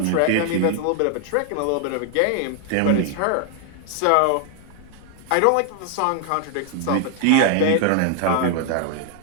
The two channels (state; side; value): different; both; correlation 0.00